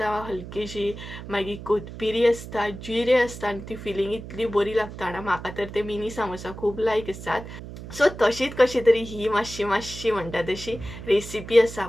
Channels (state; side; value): noise; right; hum, 12 dB below the sound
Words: हलकीशी, मागीर कोथमिरी आसता, जिरे आसता आनी ती फिलींग इतली बरी लागता ना. म्हाका तर ते मिनी सामोसा खूब लायक आसात. सो तशीच कशी तरी ही मातशी म्हणटा तशी रेसिपी आसा,